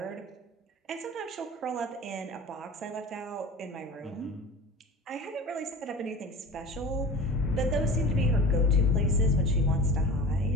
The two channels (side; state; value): both; normal; correlation 0.36